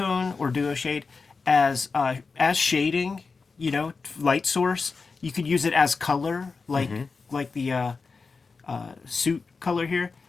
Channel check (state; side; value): quieter; right; 4.5 dB